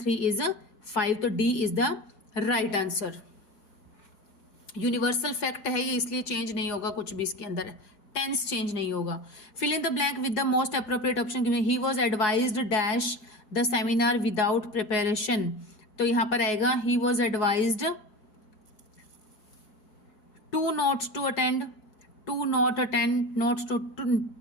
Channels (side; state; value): right; late; 4.7 ms